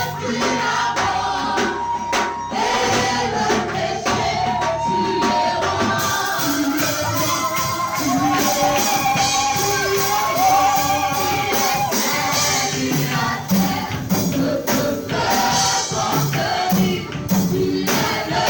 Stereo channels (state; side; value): identical; both; correlation 1.00